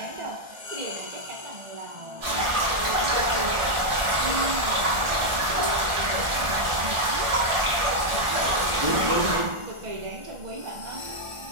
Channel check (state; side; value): late; left; 1.4 ms